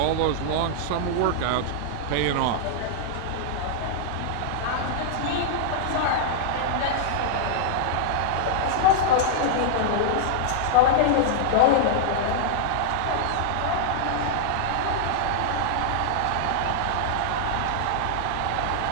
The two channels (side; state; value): both; different; correlation -0.01